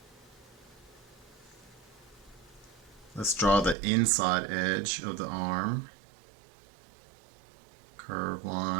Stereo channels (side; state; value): left; drops out; at 3.8 s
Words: Let's draw the inside edge of the arm. Curved